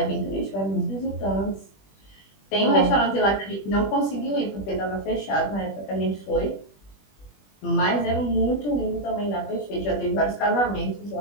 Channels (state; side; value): late; right; 20 ms